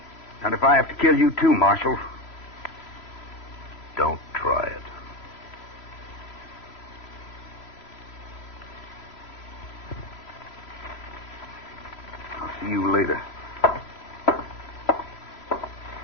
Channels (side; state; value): right; late; 3.0 ms